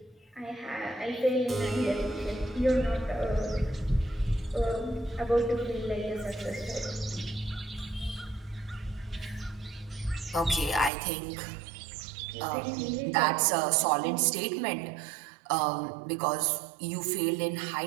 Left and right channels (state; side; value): drops out; left; at 10.9 s